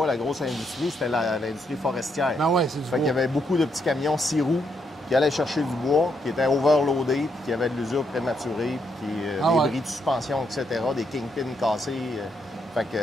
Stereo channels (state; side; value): normal; both; correlation 0.77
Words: la grosse industrie, c'était l'industrie forestière. Ben ouais, c'est du Fait qu'il y bois. avait beaucoup de petits camions 6 roues qui allaient chercher du bois, qui étaient overloadés, puis qui avaient de l'usure prématurée, puis des ouais. bris de suspension, etc., des kingpins cassés. Fait que